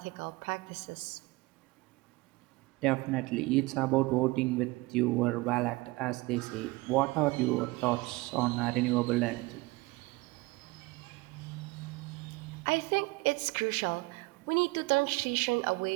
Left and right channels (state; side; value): quieter; left; 22.4 dB